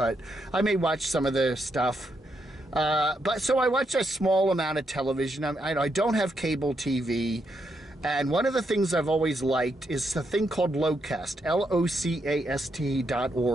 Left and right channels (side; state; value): both; normal; correlation 0.80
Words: I may watch some of the stuff. So I watch a small amount of television. I don't have cable TV. And one of the things I've always liked is a thing called Locast, LOCAST.org.